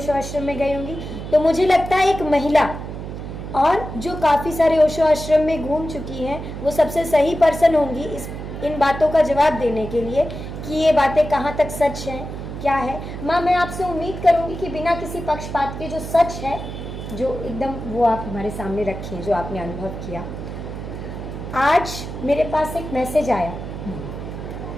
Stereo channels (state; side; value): noise; right; hum, 8 dB below the sound